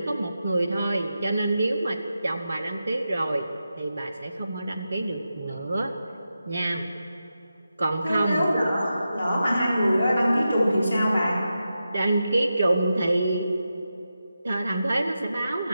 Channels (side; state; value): both; inverted; correlation -0.90